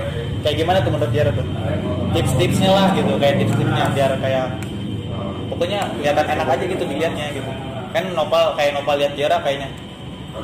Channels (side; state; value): both; identical; correlation 1.00